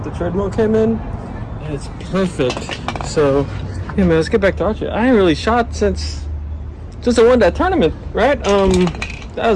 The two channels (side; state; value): both; identical; correlation 1.00